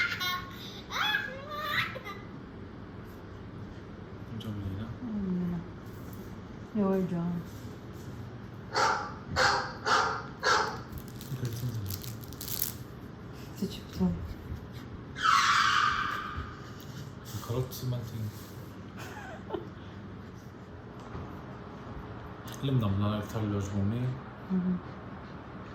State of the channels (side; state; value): both; identical; correlation 1.00